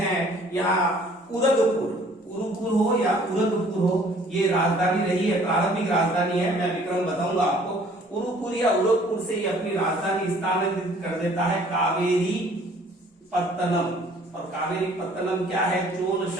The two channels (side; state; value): both; normal; correlation 0.56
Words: यहाँ उरगपुर, उरुपुर हो या उरगपुर हो, ये राजधानी रही है, प्रारंभिक राजधानी है। मैं विक्रम बताऊंगा आपको। उरुपुर या उरगपुर से ये अपनी राजधानी स्थानांतरित कर देता है कावेरी पत्तनम। और कावेरी पत्तनम क्या है, चोल